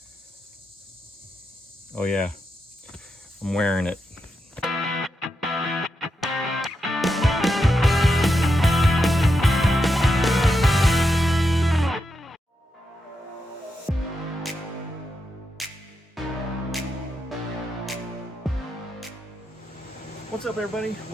Oh yeah, I'm wearing it. What's up everybody?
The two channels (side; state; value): both; normal; correlation 0.85